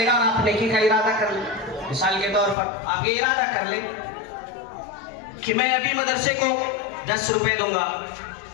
گا، اور آپ نیکی کا ارادہ کر لیں. مثال کے طور پر آپ یہ ارادہ کر لیں کہ میں ابھی مدرسے کو 10 روپے دوں گا،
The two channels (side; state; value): right; drops out; at 2.6 s